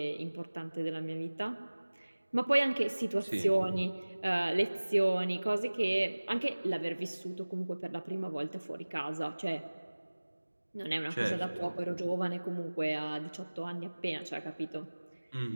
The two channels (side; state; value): both; inverted; correlation -1.00